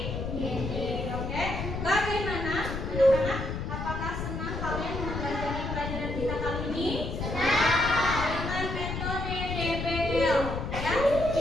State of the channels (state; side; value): noise; left; rumble, 4 dB below the sound